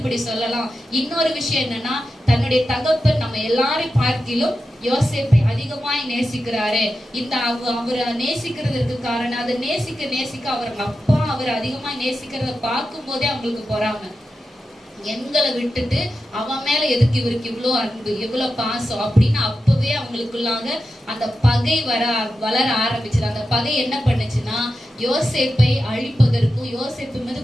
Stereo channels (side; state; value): both; normal; correlation 0.90